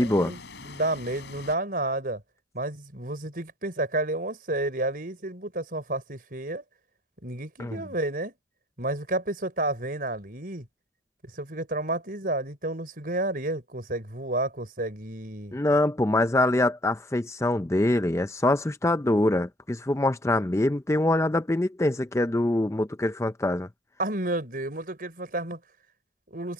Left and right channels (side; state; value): both; normal; correlation 0.55